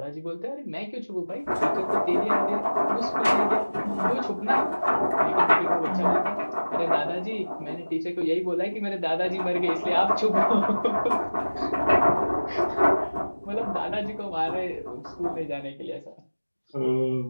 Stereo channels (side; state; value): both; inverted; correlation -1.00